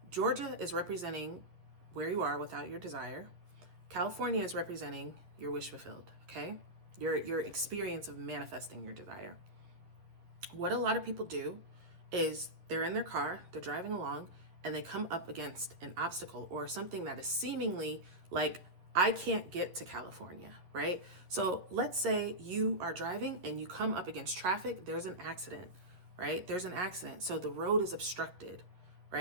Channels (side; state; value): left; late; 11 ms